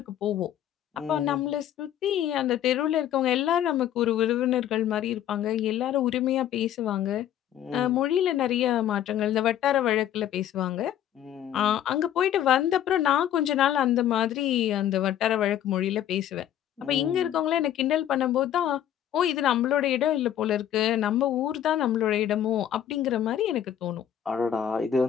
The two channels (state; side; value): quieter; right; 10.8 dB